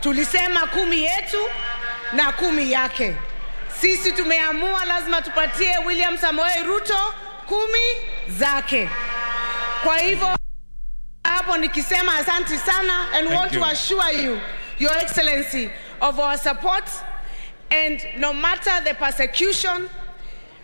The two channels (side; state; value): both; inverted; correlation -1.00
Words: Tulisema 10 yetu na 10 yake. Sisi tumeamua lazima tupatie William Samoei Ruto 10 zake. Kwa hivyo hapo nikisema asante sana, and want to assure you, Your Excellency, of our support, and no matter the persecution,